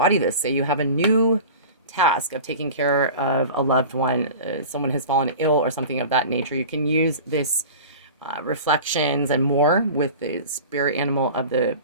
this, say you have a new task of taking care of a loved one, someone has fallen ill or something of that nature, you can use this reflections and more with the spirit animal of the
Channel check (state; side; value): inverted; both; correlation -0.37